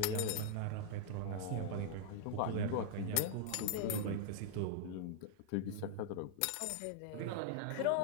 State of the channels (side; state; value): both; different; correlation -0.01